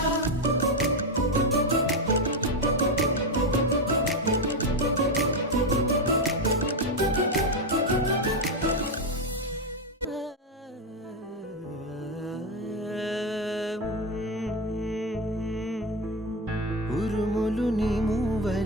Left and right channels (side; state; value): both; normal; correlation 0.10